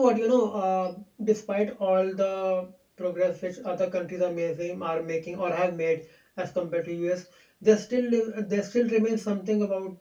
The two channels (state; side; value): identical; both; correlation 1.00